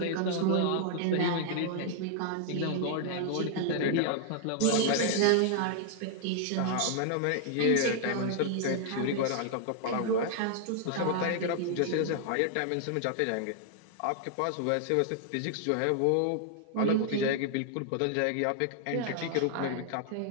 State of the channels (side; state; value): both; different; correlation 0.00